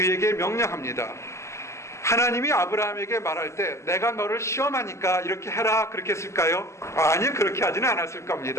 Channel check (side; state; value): right; late; 0.13 ms